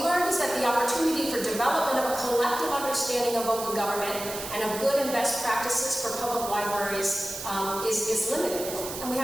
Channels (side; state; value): right; noise; hiss, 8 dB below the sound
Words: learned is that the opportunity for development of a collective understanding of open government and of good and best practices for public libraries is limited, and we